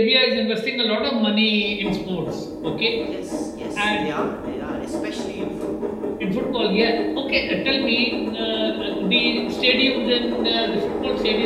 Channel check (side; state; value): both; identical; correlation 1.00